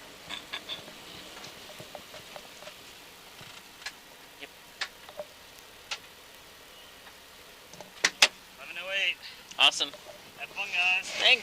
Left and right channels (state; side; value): identical; both; correlation 1.00